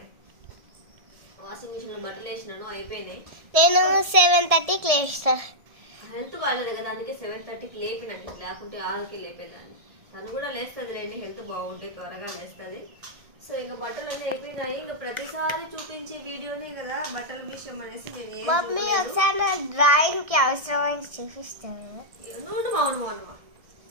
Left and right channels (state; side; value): late; left; 1.7 ms